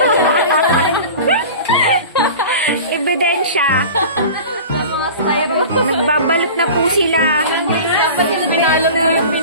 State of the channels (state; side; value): inverted; both; correlation -0.36